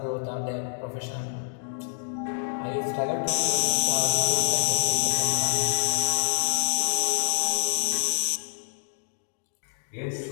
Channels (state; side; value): silent; right; 60 dB below the other